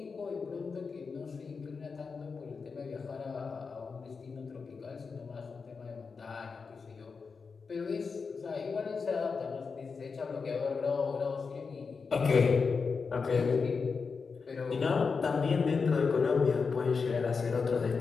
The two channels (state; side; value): quieter; right; 5.1 dB